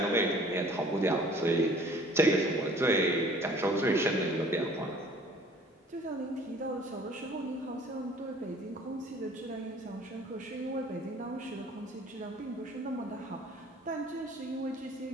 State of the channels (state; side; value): normal; both; correlation 0.52